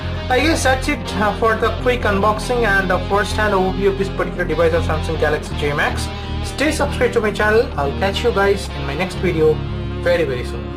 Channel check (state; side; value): identical; both; correlation 1.00